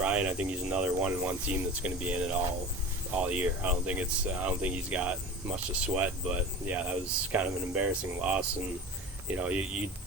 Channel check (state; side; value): normal; both; correlation 0.33